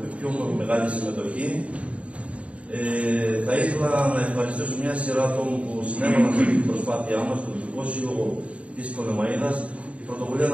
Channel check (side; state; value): left; late; 0.064 ms